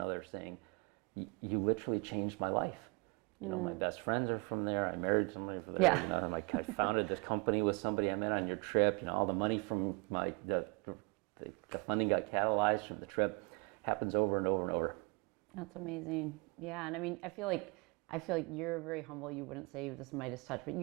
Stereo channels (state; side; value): quieter; left; 29.8 dB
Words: saying, you literally changed my life. My best friends are from there. I married somebody from there. I founded this company with somebody I met on your trip. All the money from the funding got catalyzed from the trip. Happens over and over and over. That's amazing. Yeah, and I mean, I feel like you're very humble. You wouldn't say this is Midas touch, but